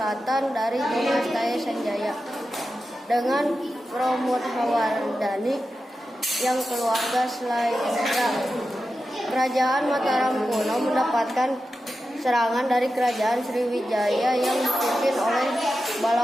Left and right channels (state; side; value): normal; both; correlation 0.91